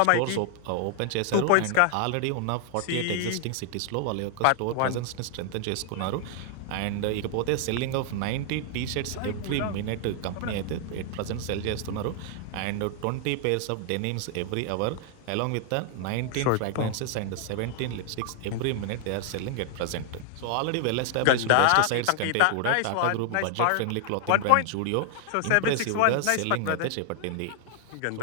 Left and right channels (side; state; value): both; different; correlation 0.00